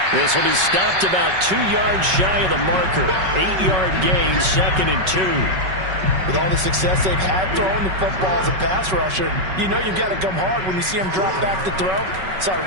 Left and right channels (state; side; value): late; left; 5.3 ms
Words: This will be stopped about 2 yards shy of the marker. 8-yard gain, 2nd and 2. With all the success they've had throwing the football as a pass rusher, you know you've got to come hard when you see him drop back to throw. So I